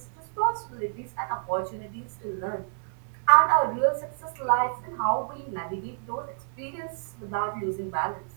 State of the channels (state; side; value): silent; left; 59 dB below the other